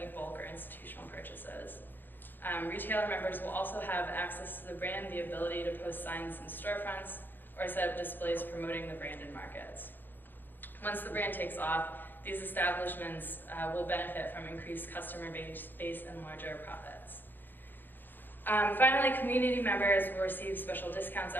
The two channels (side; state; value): right; late; 0.093 ms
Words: bulk or institutional purchases. Retailer members will also have access to the brand, the ability to post signs in storefronts, or set up displays promoting the brand in markets. Once the brand takes off, these establishments will benefit from increased customer base and larger profits. Finally, community members will receive special discounts